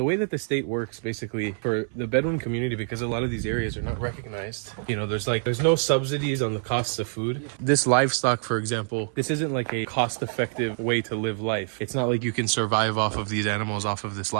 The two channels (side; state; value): left; silent; 57 dB below the other